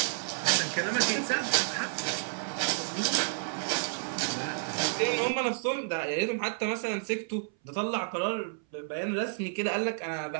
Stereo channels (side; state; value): left; silent; 57 dB below the other